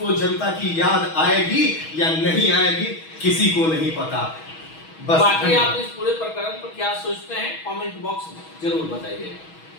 जनता की याद आएगी या नहीं आएगी किसी को नहीं पता। बस बाकी आप इस पूरे प्रकरण पर क्या सोचते हैं, कमेंट बॉक्स में जरूर बताइए।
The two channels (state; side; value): late; right; 6.2 ms